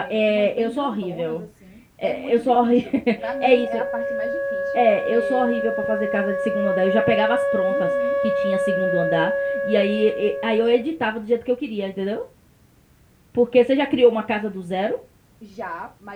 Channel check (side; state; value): both; identical; correlation 1.00